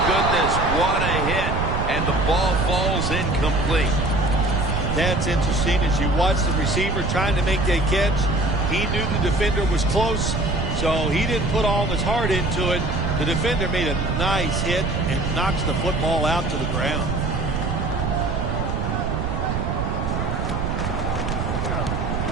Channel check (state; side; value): noise; right; rumble, 1 dB below the sound